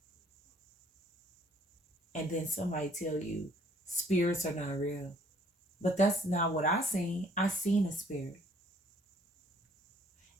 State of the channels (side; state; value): both; normal; correlation 0.61